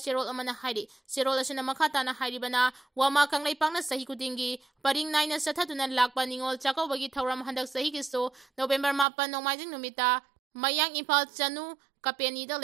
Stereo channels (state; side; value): drops out; left; at 9.1 s